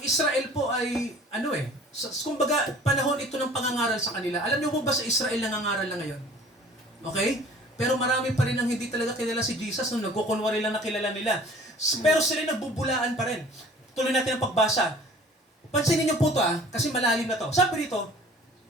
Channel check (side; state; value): both; normal; correlation 0.48